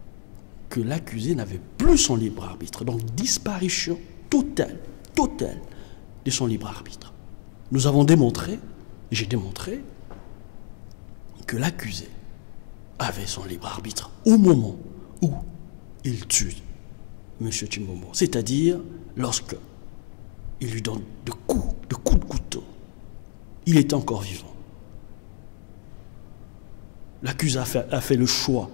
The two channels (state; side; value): silent; right; digital silence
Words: que l'accusé n'avait plus son libre arbitre. Donc disparition totale de son libre arbitre. Nous avons démontré, j'ai démontré, que l'accusé avait son libre arbitre au moment où il tue M. Chimbombo. C'est-à-dire lorsque il lui donne de coups de couteau. Il est encore vivant. L'accusé a fait le choix